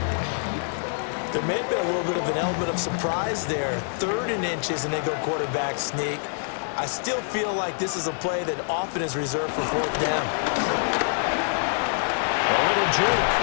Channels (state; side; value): silent; right; digital silence